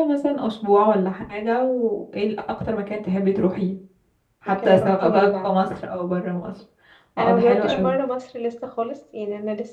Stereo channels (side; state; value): both; identical; correlation 1.00